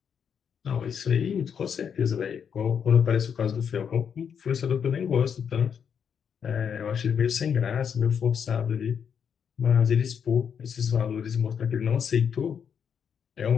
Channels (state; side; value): quieter; right; 7.5 dB